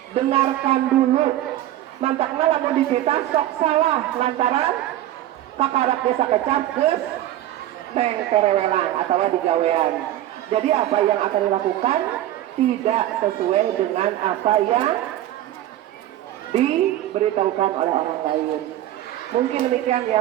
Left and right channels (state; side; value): quieter; left; 13.5 dB